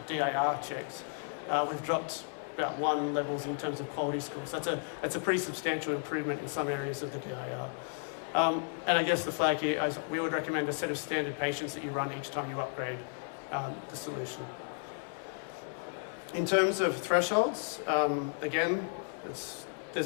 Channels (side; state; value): right; silent; 55 dB below the other